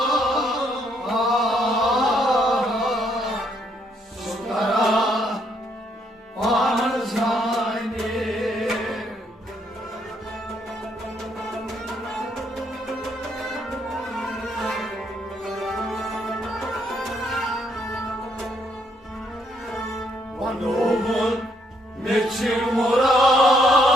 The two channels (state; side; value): normal; both; correlation 0.71